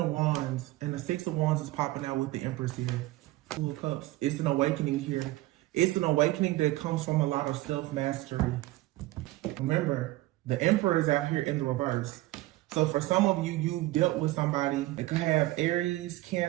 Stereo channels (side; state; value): left; quieter; 18.1 dB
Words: Wands and the Six of Wands is popping out with the Empress here. Two of Cups. It's an awakening here. It's an awakening that comes from a lot of self-mastery. Remember, the Emperor is out here in the reverse. So for some of you, you've dealt with somebody that could have Aries,